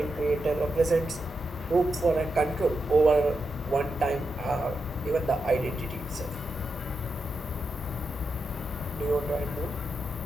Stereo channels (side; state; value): both; normal; correlation 0.86